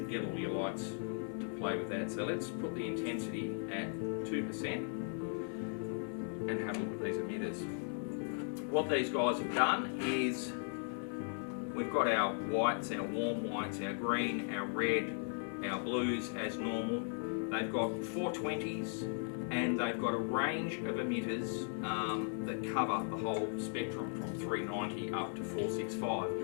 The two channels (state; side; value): silent; right; 53 dB below the other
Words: get all your lights to play with that. So let's put the intensity at 2% and have a look at these emitters. What these guys have done is we've got our whites, our warm whites, our green, our red, our blues as normal. They've got 420s, and they've got a range of emitters that cover the whole spectrum from 390 up to